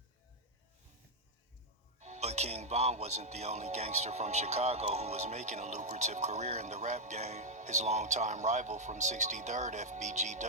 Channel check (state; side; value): normal; both; correlation -0.02